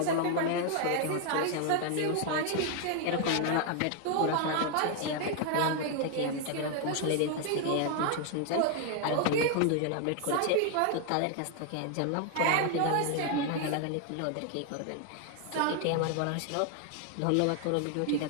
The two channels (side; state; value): both; different; correlation 0.01